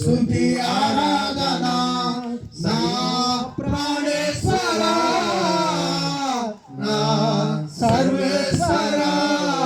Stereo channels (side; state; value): both; identical; correlation 1.00